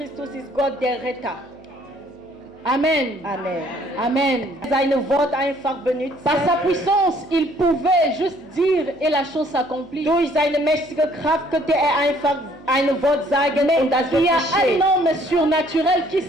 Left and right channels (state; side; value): noise; left; hum, 28 dB below the sound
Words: ist Gott, der Retter. Amen. Amen. Amen. Seine Wort einfach benutzt. Par sa puissance, il pouvait juste dire et la chose s'accomplit. Durch seine mächtige Kraft könnte einfach ein Wort sagen und das wird Il y a geschehen. un homme surnaturel qui